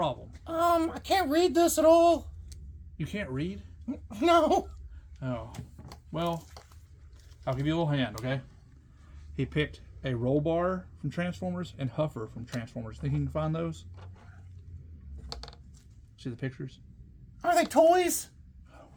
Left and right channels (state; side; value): identical; both; correlation 1.00